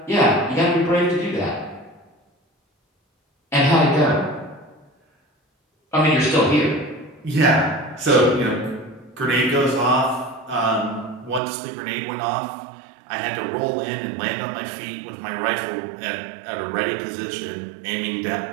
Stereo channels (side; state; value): left; drops out; at 11.4 s